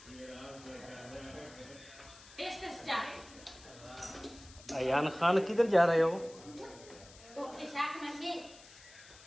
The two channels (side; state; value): left; noise; hiss, 20 dB below the sound